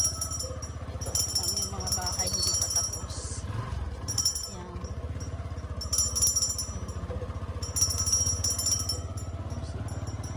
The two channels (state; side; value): identical; both; correlation 1.00